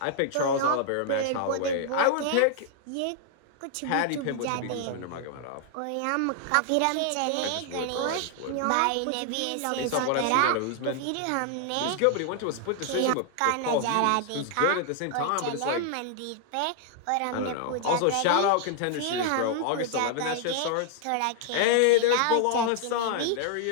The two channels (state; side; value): different; both; correlation 0.00